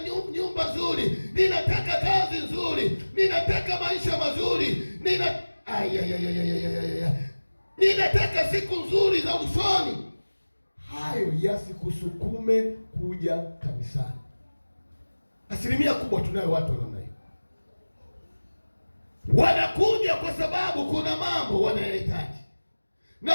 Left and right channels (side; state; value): both; inverted; correlation -1.00